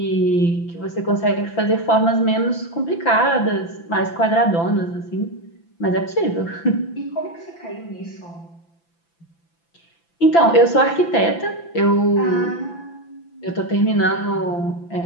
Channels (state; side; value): late; right; 5.9 ms